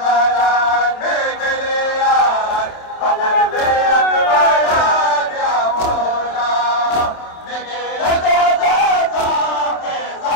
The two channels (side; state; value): right; late; 27 ms